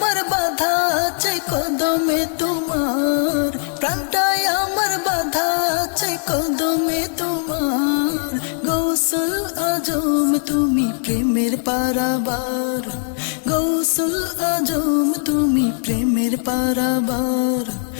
বাধা আছে কদমে তোমার, প্রাণটায় আমার বাধা আছে কদমে তোমার। গৌসুল আজম তুমি প্রেমের পারাবার, গৌসুল আজম তুমি প্রেমের পারাবার,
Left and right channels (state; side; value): silent; right; 66 dB below the other